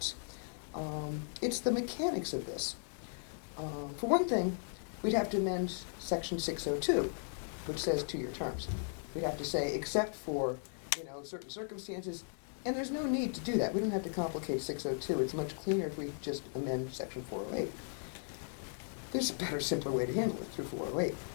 It's the mechanics of this. For one thing, we'd have to amend section 602, which says 2-year terms. We'd have to say, except for, you know, certain circumstances, and there's no need to do that. We don't have to complicate 602. It's much cleaner if we just amend section 408. There's a better, simpler way to handle it through 408.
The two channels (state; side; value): silent; right; digital silence